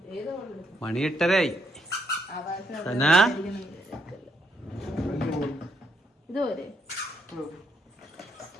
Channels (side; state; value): both; normal; correlation 0.75